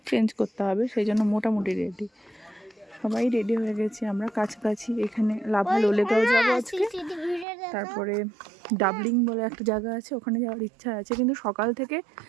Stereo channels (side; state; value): left; drops out; at 7.5 s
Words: চেঞ্জ করতে হবে, সেই জন্য মোটামুটি রেডি। সবাই রেডি হয়ে গেছি আমরা। কাছাকাছি এখানে লাভা লোলেগাঁও যাবো আজকে। তারপরে ডাবলিং বলে একটা জায়গা আছে, ওখানে যাওয়ার ইচ্ছা আছে, কিন্তু সকাল থেকে